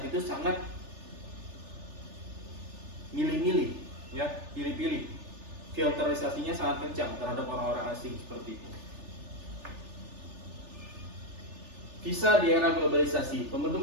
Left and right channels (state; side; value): late; left; 3.4 ms